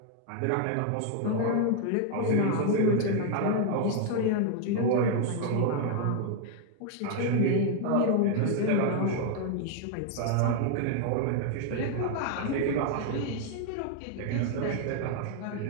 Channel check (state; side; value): different; both; correlation 0.00